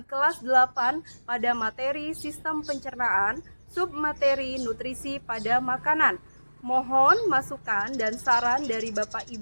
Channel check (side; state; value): both; inverted; correlation -1.00